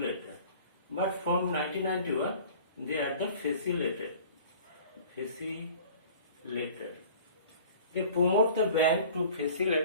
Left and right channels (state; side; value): inverted; both; correlation -0.46